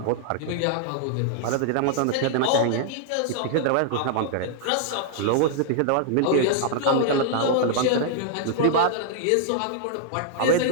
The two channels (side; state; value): both; different; correlation -0.01